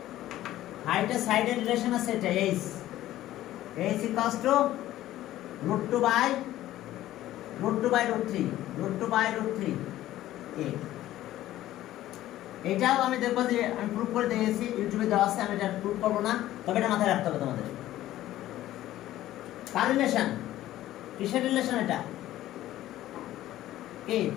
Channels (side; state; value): right; quieter; 14.3 dB